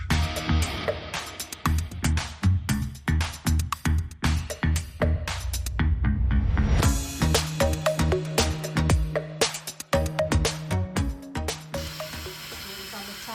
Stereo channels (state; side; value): identical; both; correlation 1.00